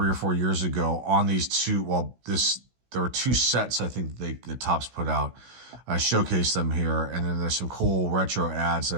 or 4 years ago on these two. Well, there were 2 sets I think the Topps put out. I showcased them here, and then there's some cool retro ads that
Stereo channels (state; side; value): late; left; 16 ms